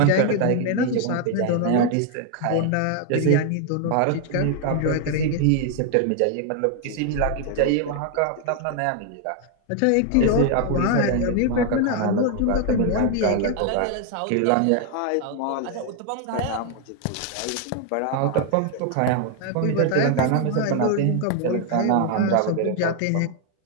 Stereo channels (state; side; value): different; both; correlation 0.00